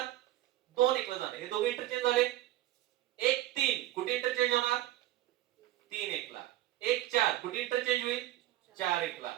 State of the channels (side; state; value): left; quieter; 14.9 dB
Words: 2 1 ला जाणार. हे दोघे इंटरचेंज झाले. 1 3 कुठे इंटरचेंज होणार? 3 1 ला. 1 4 कुठे इंटरचेंज होईल? 4 1 ला.